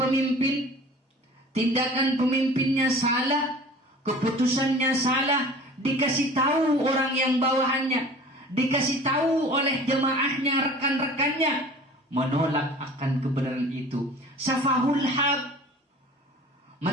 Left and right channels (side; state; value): both; normal; correlation 0.43